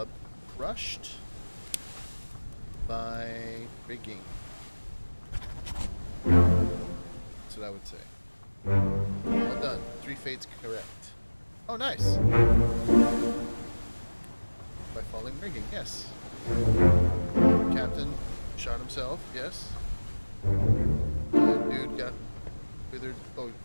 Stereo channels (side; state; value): both; inverted; correlation -1.00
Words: crushed by rigging. That's what I would say. Well done. 3 fates correct. Oh, nice. By falling rigging, yes. Captain shot himself, yes. Dude got withered. Oh,